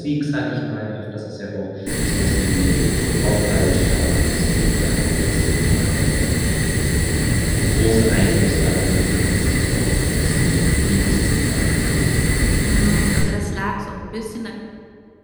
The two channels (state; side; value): identical; both; correlation 1.00